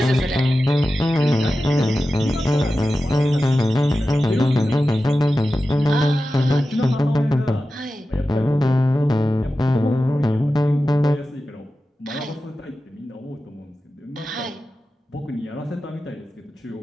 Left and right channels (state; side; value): normal; both; correlation 0.93